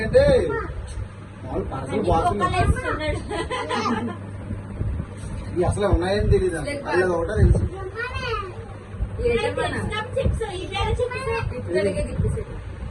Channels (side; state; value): both; identical; correlation 1.00